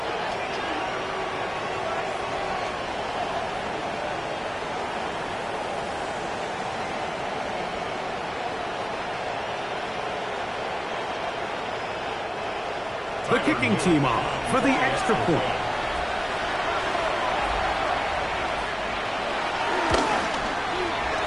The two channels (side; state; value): both; identical; correlation 1.00